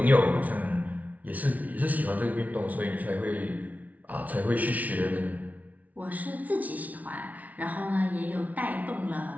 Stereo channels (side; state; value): left; late; 0.072 ms